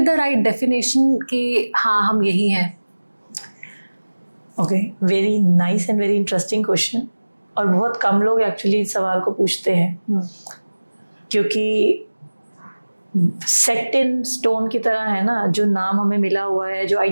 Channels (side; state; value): both; inverted; correlation -1.00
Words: the right definition कि हाँ हम यही हैं? Okay, very nice and very interesting question. और बहुत कम लोग एक्चुअली इस सवाल को पूछते हैं क्योंकि सेट इन स्टोन की तरह है ना, जो नाम हमें मिला हुआ है, जो